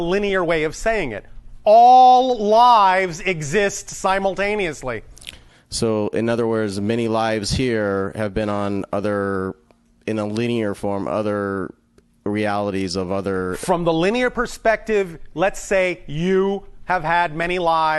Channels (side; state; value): both; identical; correlation 1.00